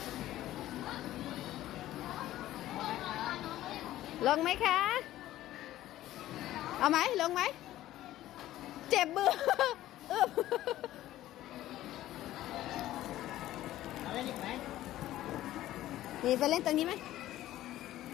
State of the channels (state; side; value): quieter; right; 14.4 dB